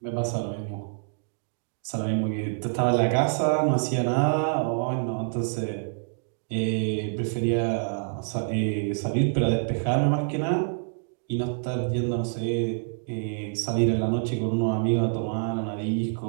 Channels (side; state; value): left; silent; digital silence